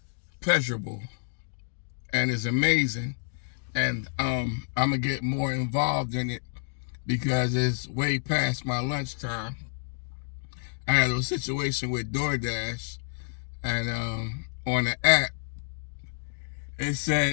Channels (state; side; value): silent; right; digital silence